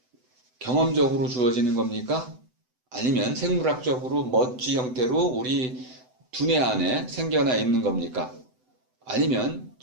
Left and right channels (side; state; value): left; late; 7.9 ms